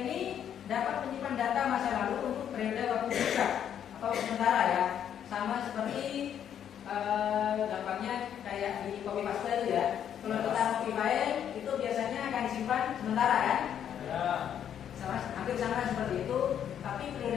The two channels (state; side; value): quieter; right; 9.3 dB